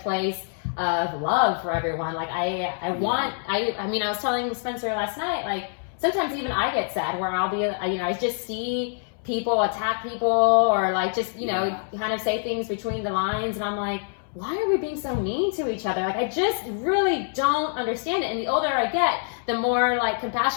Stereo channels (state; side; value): silent; right; 61 dB below the other